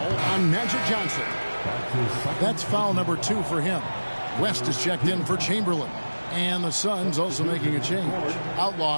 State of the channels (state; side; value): inverted; both; correlation -1.00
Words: on Magic Johnson. That's foul number 2 for him. West is checked in for Chamberlain. And the Suns also making a change.